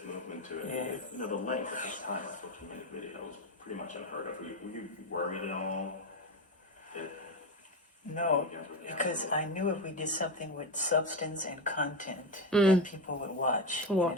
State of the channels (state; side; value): normal; both; correlation 0.14